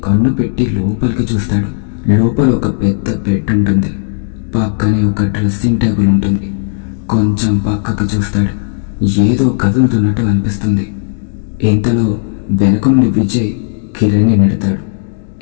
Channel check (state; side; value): silent; right; digital silence